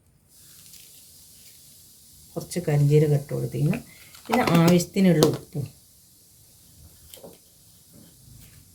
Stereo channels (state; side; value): identical; both; correlation 1.00